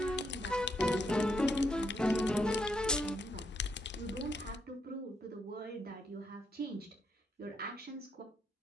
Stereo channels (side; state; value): both; normal; correlation 0.77